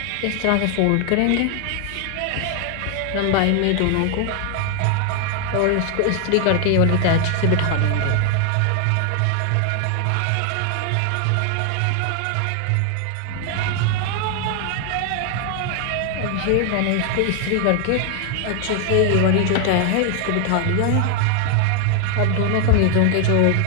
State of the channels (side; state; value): both; different; correlation 0.00